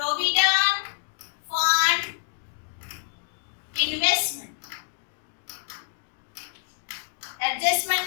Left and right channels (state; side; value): silent; right; 60 dB below the other